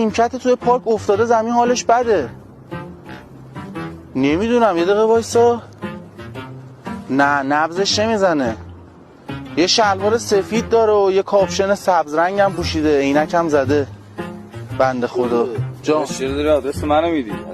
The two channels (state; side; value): identical; both; correlation 1.00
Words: توی پارک افتاده زمین، حالش بده. نمیدونم، یه دقیقه وایسا. نه نبضش نمیزنه. یه شلوار سفید داره و یه کاپشن سبز رنگ هم پوشیده، عینک هم زده. بنده خدا. جان چرا داری آدرس منو میدی